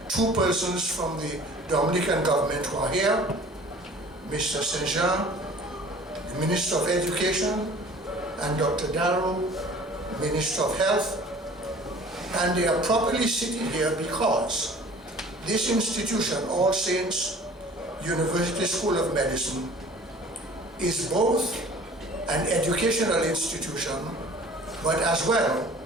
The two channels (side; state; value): both; normal; correlation 0.48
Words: two persons from the Dominican government who are here, Mr. Saint-Jean, the the Minister of Education, and Dr. Darrow, Minister of Health. And they are properly sitting here because this institution, All Saints University School of Medicine, is both an educational institution, but as well,